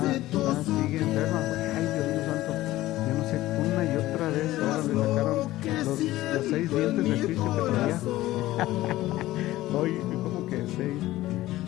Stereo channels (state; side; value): quieter; right; 16.3 dB